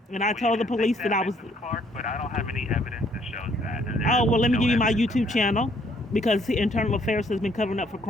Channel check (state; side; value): normal; both; correlation 0.65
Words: and I Well, you told the can think police that, that I was. Mrs. Clark, but I don't have any evidence that shows that. There Oh, is well, let me no give you my evidence of YouTube that. channel, because the internal affairs has been covering up for